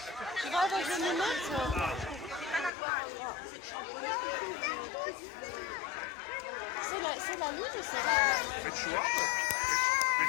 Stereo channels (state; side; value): drops out; right; at 2.7 s